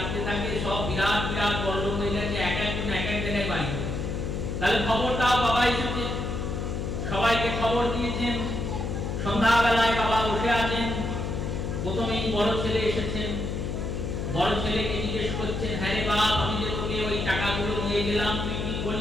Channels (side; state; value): left; noise; hum, 3 dB below the sound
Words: থাকে? সব বিরাট বিরাট বড়লোক হয়ে গেছে, এক একজন এক এক জায়গায় বাড়ি করে। তাহলে খবর দাও বাবা এসেছে। সবাইকে খবর দিয়েছেন। সন্ধ্যাবেলায় বাবা বসে আছেন। প্রথমেই বড় ছেলে এসেছেন। বড় ছেলেকে জিজ্ঞেস করছেন হ্যাঁ রে বাপ আমি যে তোকে ওই টাকাগুলো দিয়ে গেলাম তুই কি